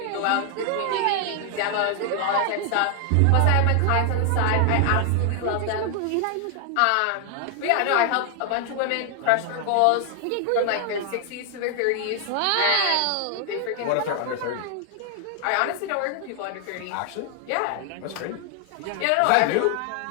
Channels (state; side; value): different; both; correlation 0.00